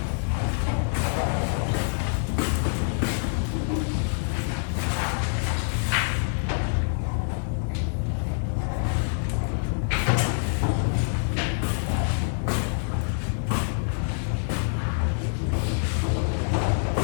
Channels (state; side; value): silent; right; 61 dB below the other